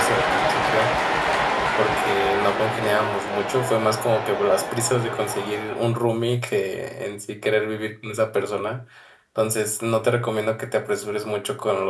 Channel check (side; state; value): both; identical; correlation 1.00